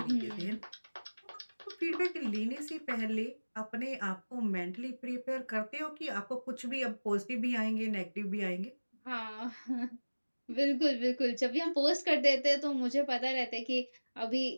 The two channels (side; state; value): both; inverted; correlation -1.00